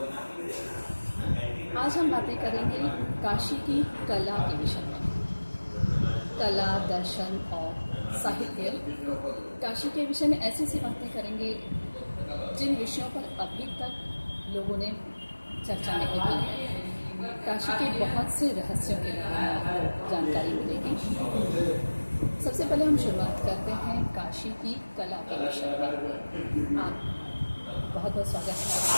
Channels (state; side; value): inverted; both; correlation -1.00